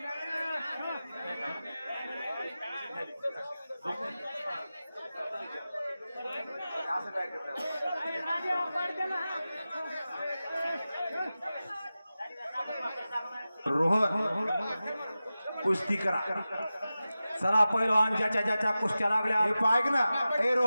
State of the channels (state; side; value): inverted; both; correlation -0.95